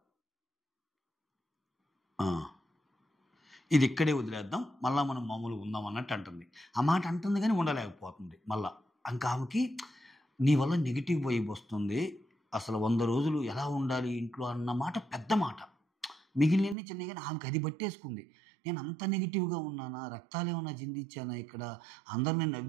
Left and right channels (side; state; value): left; drops out; at 16.8 s